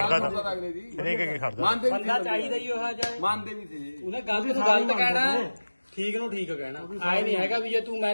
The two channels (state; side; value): inverted; both; correlation -1.00